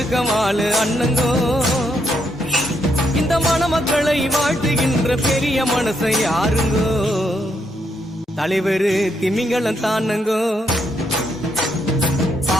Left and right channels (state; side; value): normal; both; correlation 0.77